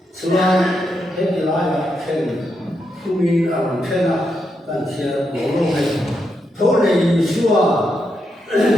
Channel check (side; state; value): both; normal; correlation 0.83